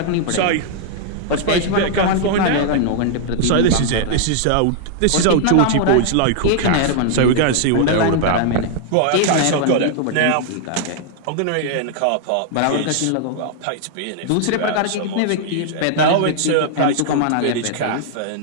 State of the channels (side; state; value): both; different; correlation -0.01